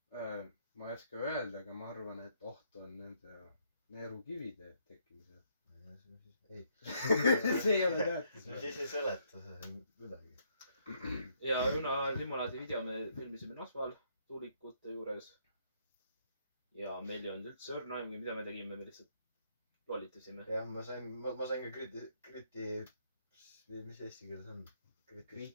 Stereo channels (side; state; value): both; inverted; correlation -0.70